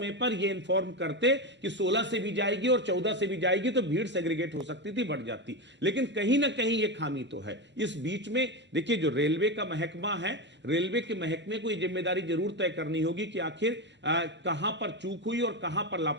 पर यह इन्फॉर्म करते कि 16 से भी जाएगी और 14 से भी जाएगी तो भीड़ सेग्रीगेट हो सकती थी, बढ़ जाती। लेकिन कहीं ना कहीं यह खामी तो है। इस बीच में देखिए, जो रेलवे का महकमा है, रेलवे के महकमे को यह जिम्मेदारी जरूर तय करनी होगी कि आखिर कहां पर चूक हुई और कहां पर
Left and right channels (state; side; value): normal; both; correlation 0.15